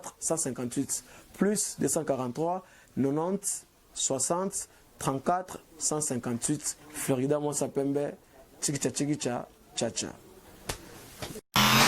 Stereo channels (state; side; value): identical; both; correlation 1.00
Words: 158 plus 243 90 60 34 158 Florida Monsapembe Chikicha Chikicha Chacha.